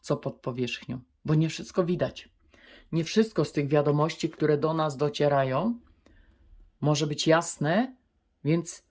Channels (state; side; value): identical; both; correlation 1.00